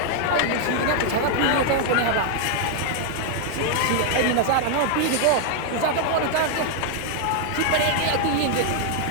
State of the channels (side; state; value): both; different; correlation 0.00